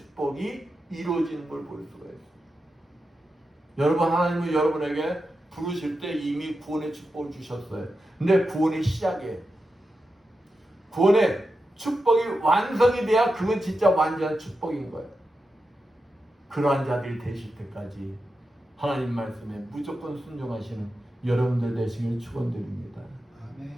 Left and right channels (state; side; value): normal; both; correlation 0.89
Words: 이루어지는 걸 볼 수가 있어요. 여러분, 하나님은 여러분에게 부르실 때 이미 구원의 축복을 주셨어요. 근데 구원의 시작이에요. 구원의 축복이 완성이 돼야 그건 진짜 완전한 축복인 거예요. 그러한 자들이 되실 때까지 하나님 말씀에 무조건 순종하시는 여러분들 되시길 축원드립니다.